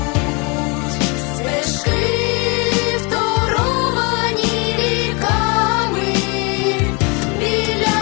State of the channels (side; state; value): right; quieter; 30.6 dB